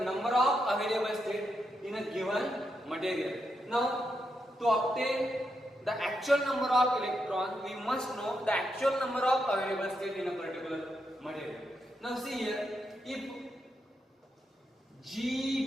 number of available state in a given material. Now, to obtain the actual number of electrons, we must know the actual number of available state in a particular material. Now see here, if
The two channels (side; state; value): both; normal; correlation 0.83